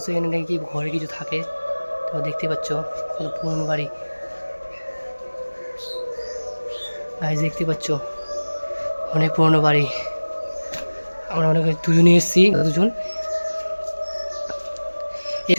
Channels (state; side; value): inverted; both; correlation -1.00